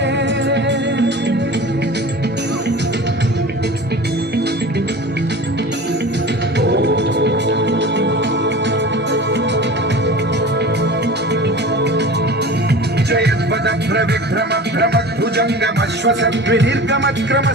विभ्रम भ्रम भुजंगमश्वसद्विनिर्गमक्रम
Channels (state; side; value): normal; both; correlation 0.36